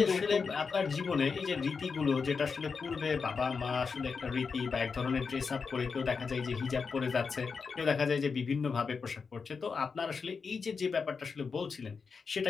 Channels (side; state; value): right; quieter; 5.2 dB